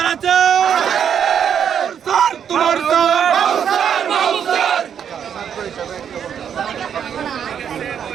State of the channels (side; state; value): left; quieter; 8.3 dB